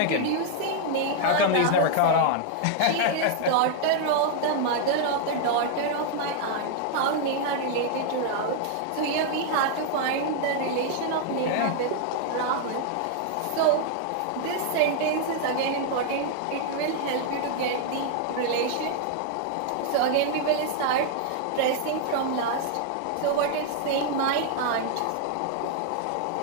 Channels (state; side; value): different; both; correlation 0.00